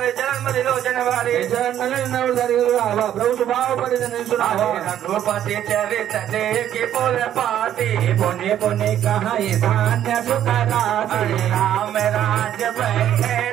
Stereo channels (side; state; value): left; quieter; 10.9 dB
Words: चरण मधि लोचन वारे चरण नव धरि आवा प्रभु स्वभाव परिजन सुनावा रघुपति चरित देखे पुर पाती पुण्य पुण्य कहाई धान्य सुख राशि राम राज बैठे